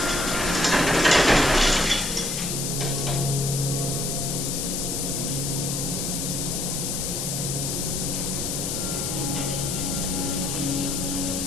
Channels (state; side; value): noise; left; hiss, 2 dB below the sound